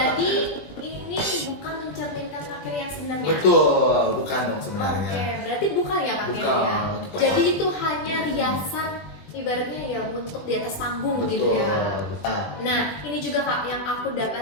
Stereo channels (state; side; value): late; right; 20 ms